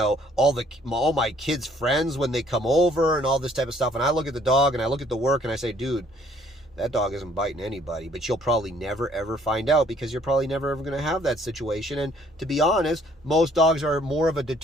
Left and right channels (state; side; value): normal; both; correlation 0.61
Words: all my kids' friends when they come over and all this type of stuff. And I look at the dog and I look at the work and I say, dude, that dog isn't biting anybody, but you'll probably never ever find out because you're probably never ever going to have that situation. And to be honest, most dogs are more of a